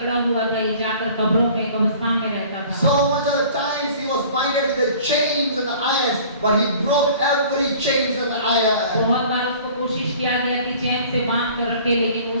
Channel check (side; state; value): both; inverted; correlation -0.48